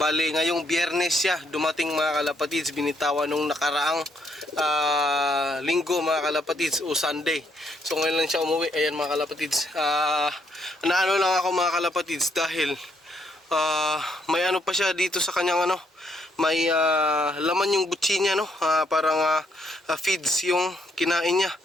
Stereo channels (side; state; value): both; normal; correlation 0.73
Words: ngayong Biyernes siya dumating mga kalapatids, binitawan nung nakaraang linggo mga kalapatids o Sunday. So ngayon lang siya umuwi. Ayan mga kalapatids. Naano lang ako mga kalapatids dahil may ano pa siya dito sa kanyang ano, may laman yung butsi niya no. Parang feeds yung kinain niya.